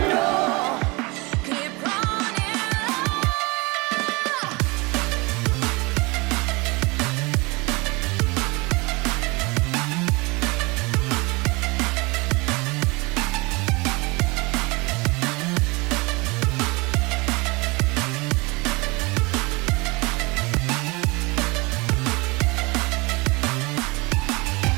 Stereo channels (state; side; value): quieter; left; 26.0 dB